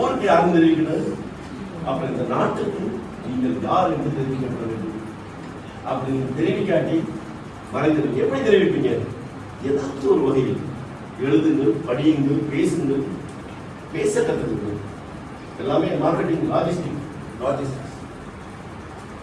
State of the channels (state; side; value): identical; both; correlation 1.00